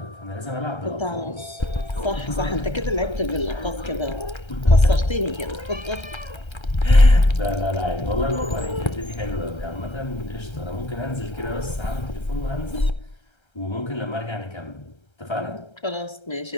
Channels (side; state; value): right; late; 1.3 ms